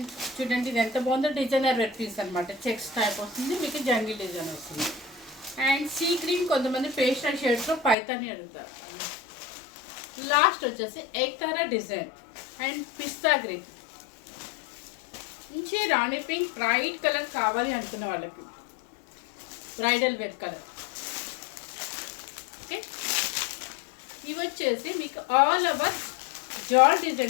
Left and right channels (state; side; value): drops out; right; at 8.0 s